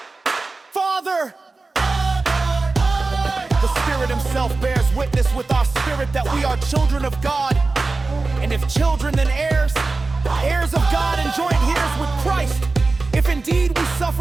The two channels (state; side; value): quieter; left; 3.6 dB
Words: Father. The Spirit himself bears witness with our spirit that we are children of God. And if children, then heirs, heirs of God and joint heirs with Christ, if indeed we